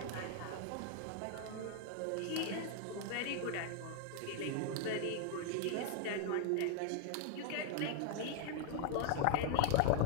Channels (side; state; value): both; different; correlation 0.00